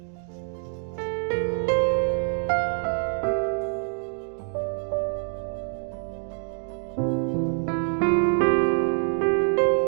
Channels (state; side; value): silent; left; 61 dB below the other